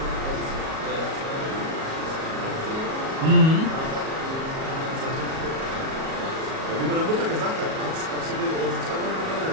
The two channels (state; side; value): late; left; 37 ms